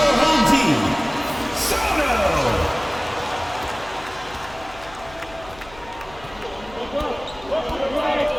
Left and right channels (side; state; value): left; noise; hum, 20 dB below the sound